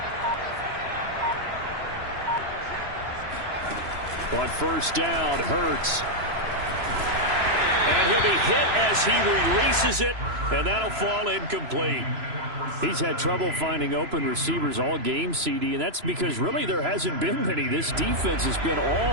On 1st down, Hurts. And he'll be hit as he releases it, and that'll fall incomplete. He's had trouble finding open receivers all game, CD, and that's because really there hasn't been many. This defense has been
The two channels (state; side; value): late; left; 3.0 ms